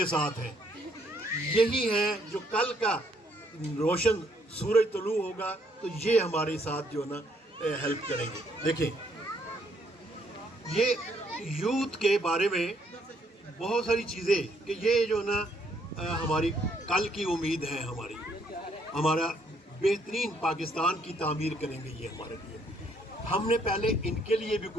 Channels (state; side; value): normal; both; correlation 0.69